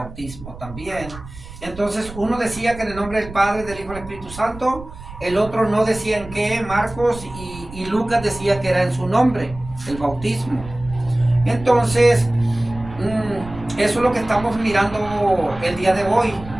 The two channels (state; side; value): noise; right; rumble, 15 dB below the sound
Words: también. Entonces, uno decía que en el nombre del Padre, del Hijo y del Espíritu Santo, el otro no decía en qué, Marcos y Lucas decía que era en su nombre, el bautismo. Entonces, eso es lo que estamos mirando el día de hoy,